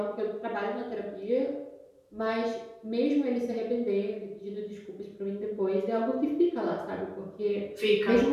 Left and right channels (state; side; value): identical; both; correlation 1.00